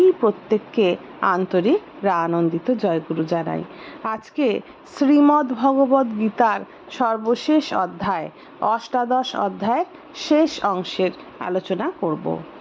প্রত্যেককে আন্তরিক আনন্দিত জয়গুরু জানাই। আজকে শ্রীমদ্ ভগবদ্ গীতার সর্বশেষ অধ্যায় অষ্টাদশ অধ্যায়ের শেষ অংশের আলোচনা করব।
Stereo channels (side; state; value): both; identical; correlation 1.00